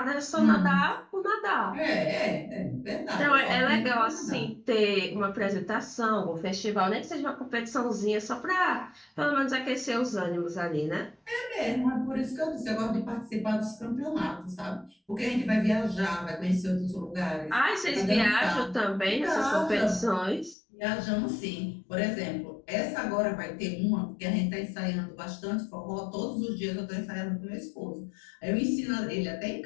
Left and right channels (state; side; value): drops out; right; at 20.6 s